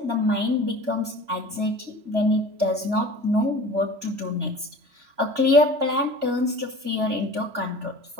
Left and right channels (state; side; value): late; left; 3.0 ms